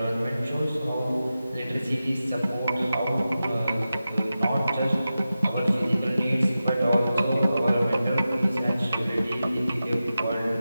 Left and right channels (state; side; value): inverted; both; correlation -0.93